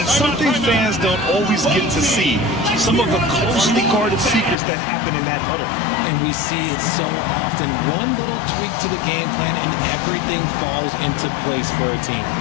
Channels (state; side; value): drops out; right; at 4.5 s